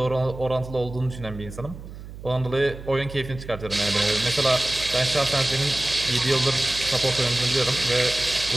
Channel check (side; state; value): right; noise; hum, 13 dB below the sound